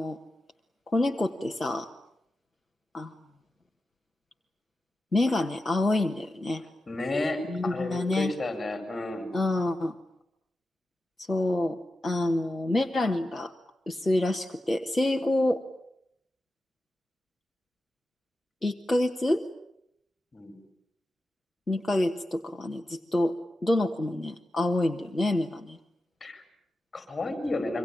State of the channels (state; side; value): normal; both; correlation 0.91